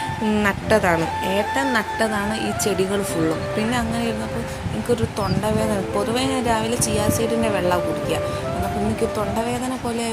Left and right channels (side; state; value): both; identical; correlation 1.00